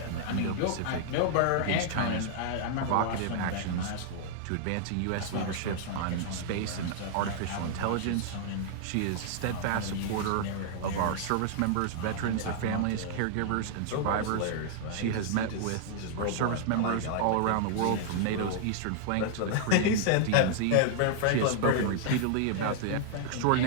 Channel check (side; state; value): both; different; correlation -0.01